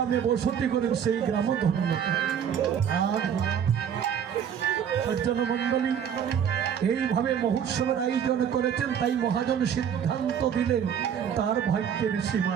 বসতি করেন সেই গ্রামও ধন্য। সজ্জন মণ্ডলী এইভাবে মহোৎসবের আয়োজন করেছেন। তাই মহাজন সিদ্ধান্ত দিলেন তার ভাগ্যের সীমা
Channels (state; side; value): quieter; left; 8.3 dB